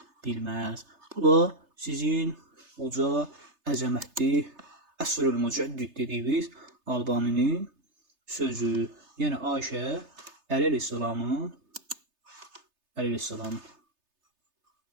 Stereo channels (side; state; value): left; late; 3.3 ms